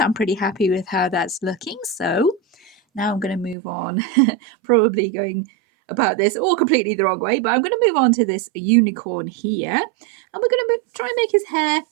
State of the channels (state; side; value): drops out; left; at 3.6 s